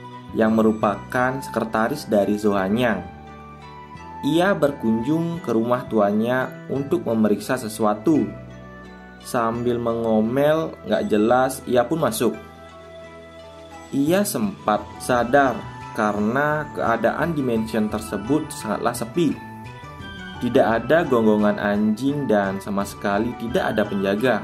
yang merupakan sekretaris dari Zohanyang. Ia berkunjung ke rumah tuannya untuk memeriksa sesuatu. Sambil mengomel gak jelas, ia pun masuk. Ia sempat sadar karena keadaan di mansion tersebut sangatlah sepi. Tidak ada gonggongan anjing dan sama sekali tidak ada penjaga.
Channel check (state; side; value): identical; both; correlation 1.00